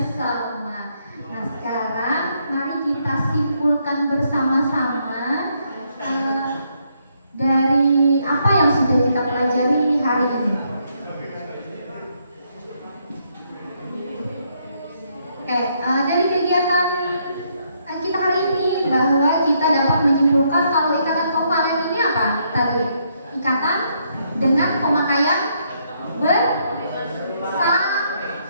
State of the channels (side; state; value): both; inverted; correlation -0.74